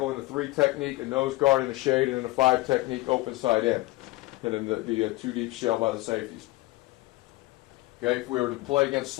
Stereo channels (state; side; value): quieter; right; 20.0 dB